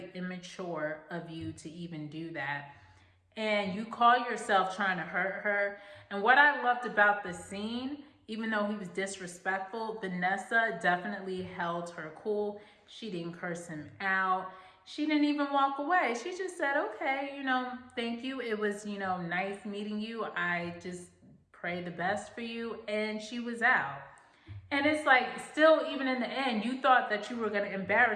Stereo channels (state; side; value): identical; both; correlation 1.00